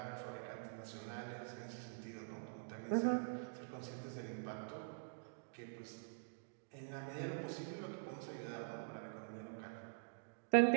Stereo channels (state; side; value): silent; left; digital silence